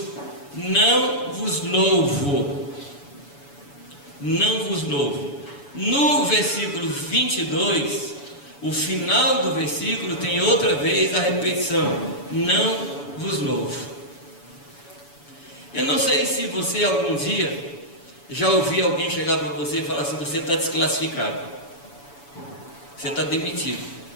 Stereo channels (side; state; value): right; late; 7.0 ms